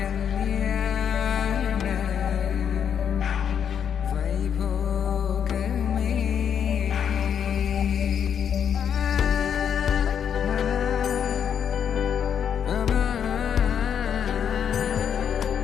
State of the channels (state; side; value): quieter; right; 8.2 dB